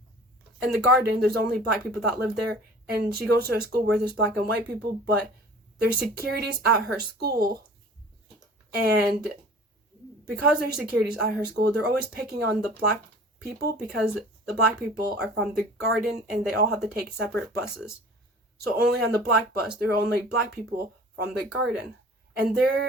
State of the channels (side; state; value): both; normal; correlation 0.45